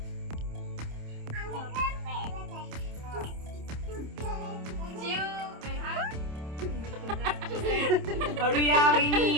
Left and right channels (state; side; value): late; left; 27 ms